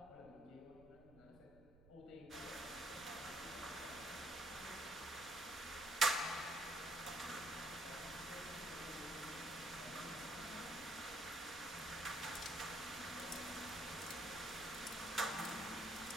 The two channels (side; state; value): right; noise; rumble, 22 dB below the sound